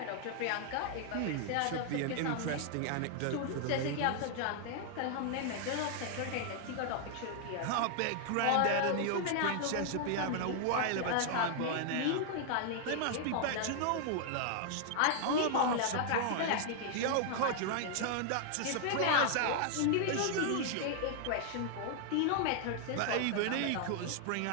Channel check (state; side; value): different; both; correlation 0.00